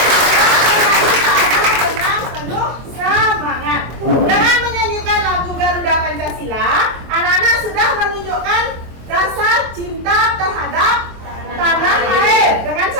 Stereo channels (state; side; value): late; left; 24 ms